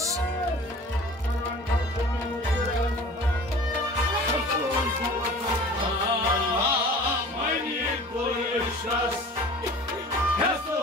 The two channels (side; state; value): both; normal; correlation 0.43